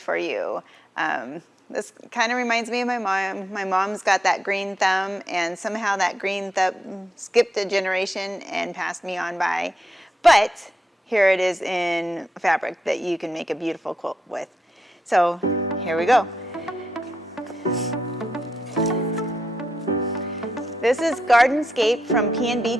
for you. This kind of reminds me of my mom. My mom's got that green thumb, and somehow that green thumb skipped a generation and passed me on by. But here it is in fabric that you can make a beautiful quilt with. So here we go. This is Gardenscape from P&B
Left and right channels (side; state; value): both; normal; correlation 0.84